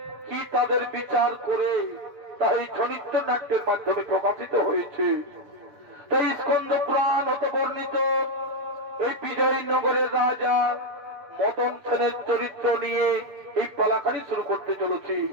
কি তাদের বিচার করে তা এই ছনিত্য নাট্যের মাধ্যমে প্রকাশিত হয়েছে। তাই স্কন্দ পুরাণ হতে বর্ণিত এই বিজয়নগরের রাজা মদন সেনের চরিত্র নিয়ে এই পালাখানি শুরু করতে চলেছি।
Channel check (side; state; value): left; late; 7.3 ms